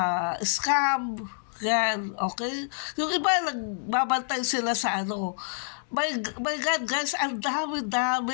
scam, yan, okay? Yung iba, nagbabantay sila sa my God, guys, ang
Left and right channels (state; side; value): silent; right; digital silence